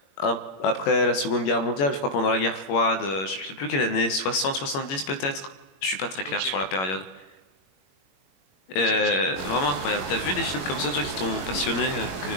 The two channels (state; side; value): late; right; 21 ms